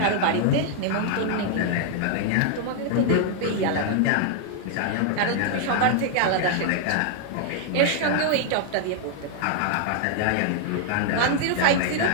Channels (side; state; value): both; different; correlation 0.00